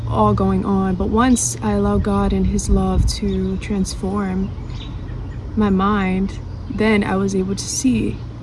all going on. But once I allowed God and his love to transform my mind, then I was able to see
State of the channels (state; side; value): identical; both; correlation 1.00